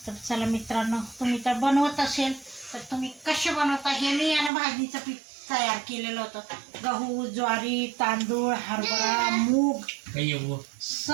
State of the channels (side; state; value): left; drops out; at 4.5 s